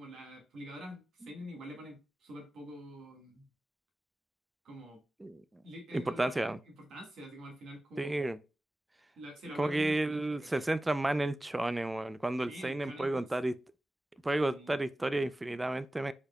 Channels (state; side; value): normal; both; correlation 0.96